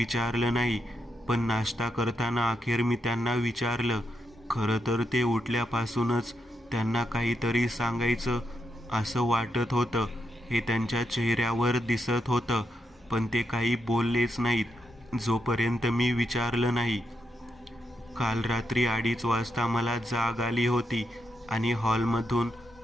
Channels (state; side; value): normal; both; correlation 0.83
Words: नाही. पण नाश्ता करताना अखेर मी त्यांना विचारलं. खरं तर ते उठल्यापासूनच त्यांना काहीतरी सांगायचं असं वाटत होतं. हे त्यांच्या चेहऱ्यावर दिसत होतं. पण ते काही बोललेच नाहीत जोपर्यंत मी विचारलं नाही. काल रात्री 2:30 वाजता मला जाग आली होती आणि हॉलमधून